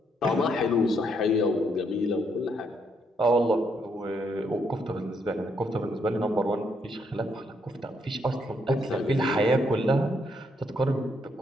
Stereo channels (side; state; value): both; normal; correlation 0.74